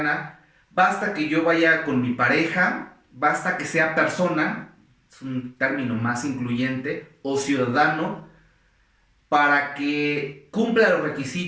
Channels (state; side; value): identical; both; correlation 1.00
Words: basta que yo vaya con mi pareja, basta que sea persona, es un término más incluyente, o ciudadano, para que cumpla los